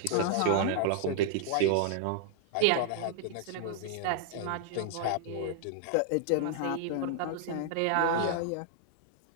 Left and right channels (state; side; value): different; both; correlation -0.01